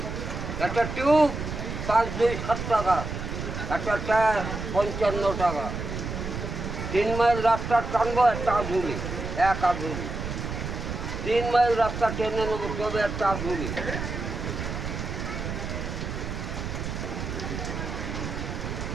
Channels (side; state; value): right; noise; rumble, 5 dB below the sound